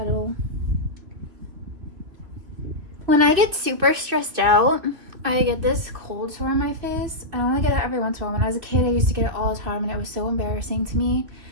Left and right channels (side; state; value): left; late; 3.4 ms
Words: When I get super stressed out, I get this cold sore on my face. I only get it every once in a while. When I was a kid, I used to get it all the time, and it was so embarrassing to me.